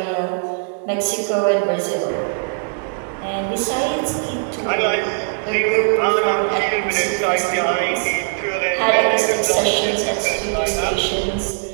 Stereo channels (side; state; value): left; silent; 62 dB below the other